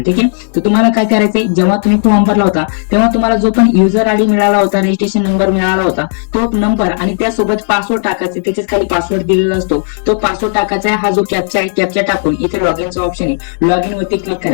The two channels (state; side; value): silent; right; digital silence